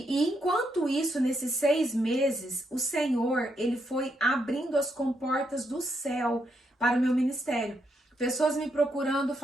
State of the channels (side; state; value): both; normal; correlation 0.79